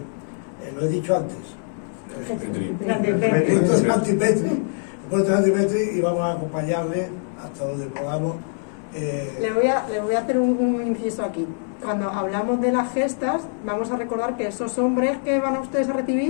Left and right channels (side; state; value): right; silent; digital silence